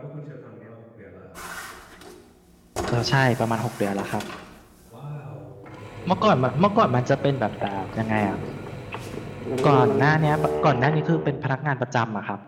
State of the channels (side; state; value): both; identical; correlation 1.00